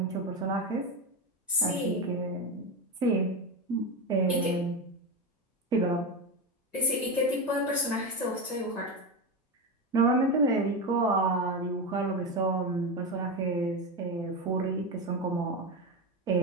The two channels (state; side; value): normal; both; correlation 0.16